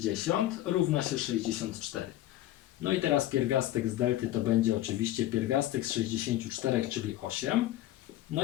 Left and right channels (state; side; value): quieter; right; 14.2 dB